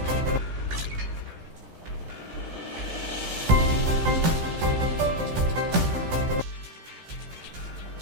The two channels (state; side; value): late; left; 16 ms